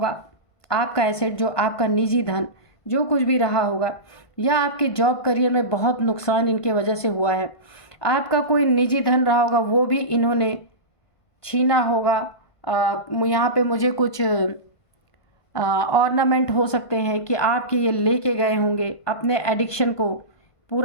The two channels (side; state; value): right; late; 1.5 ms